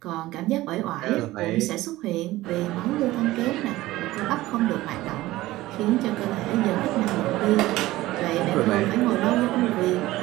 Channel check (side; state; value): left; quieter; 17.3 dB